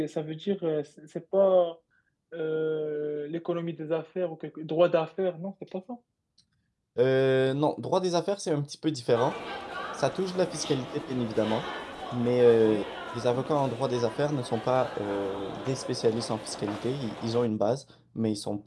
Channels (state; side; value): identical; both; correlation 1.00